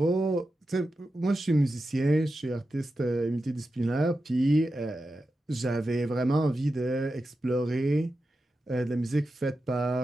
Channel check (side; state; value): both; normal; correlation 0.91